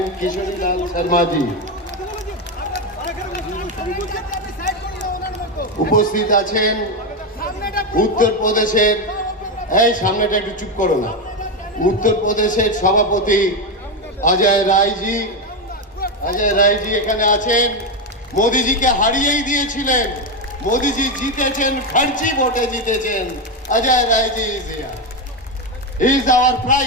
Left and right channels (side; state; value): both; normal; correlation 0.10